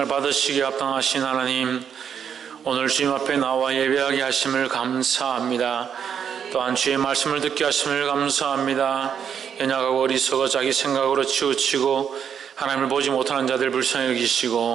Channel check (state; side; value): quieter; left; 7.9 dB